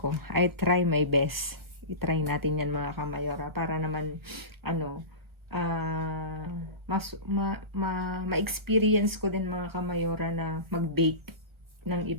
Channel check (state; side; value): late; left; 1.4 ms